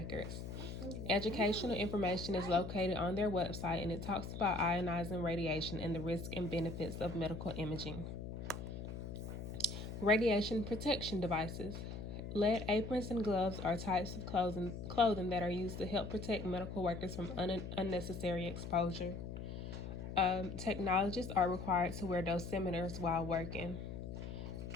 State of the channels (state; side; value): noise; left; hum, 7 dB below the sound